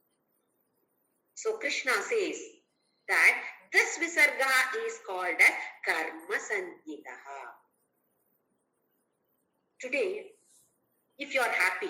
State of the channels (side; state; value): both; identical; correlation 1.00